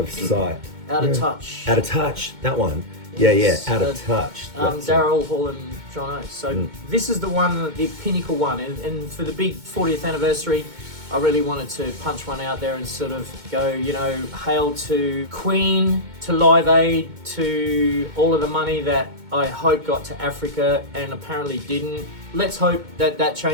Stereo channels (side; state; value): left; late; 2.2 ms